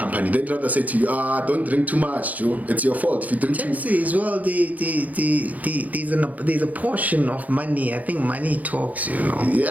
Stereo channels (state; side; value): late; left; 0.077 ms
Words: They'd rather say to you, don't drink too much, Joe. It's your fault if you drink too much. As well, there's a portion of money. I think money talks,